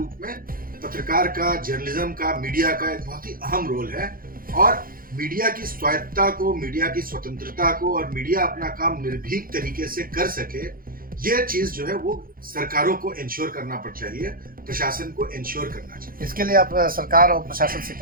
में पत्रकार का, जर्नलिज्म का, मीडिया का एक बहुत ही अहम रोल है। और मीडिया की स्वायत्तता को, मीडिया की स्वतंत्रता को और मीडिया अपना काम निर्भीक तरीके से कर सके, ये चीज जो है वो सरकारों को इंश्योर करना पड़ चाहिए, प्रशासन को इंश्योर करना चाहिए। इसके लिए आप सरकार और प्रशासन से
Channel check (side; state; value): left; late; 0.42 ms